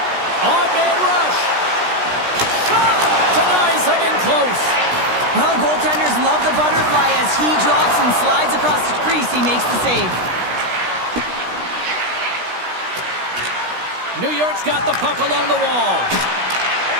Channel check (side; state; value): left; late; 16 ms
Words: Odd man rush. Shot! Denies him in close. Well, goaltenders love the butterfly as he drops and slides across the crease. He makes the save. New York's got the puck along the wall.